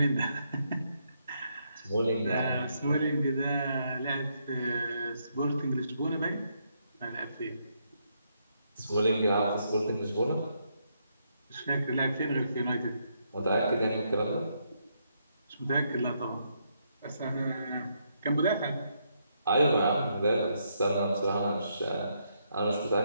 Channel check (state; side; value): inverted; both; correlation -0.76